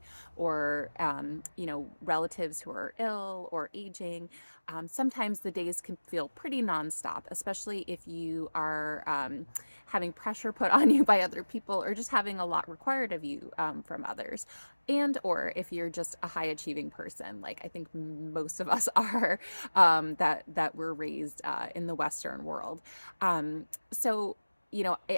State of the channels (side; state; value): both; inverted; correlation -1.00